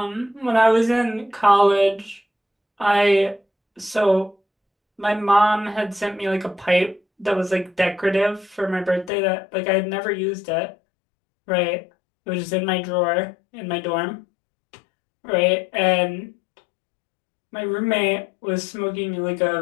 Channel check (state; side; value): drops out; right; at 9.1 s